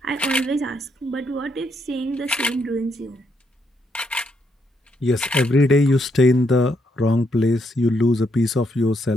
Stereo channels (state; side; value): normal; both; correlation 0.76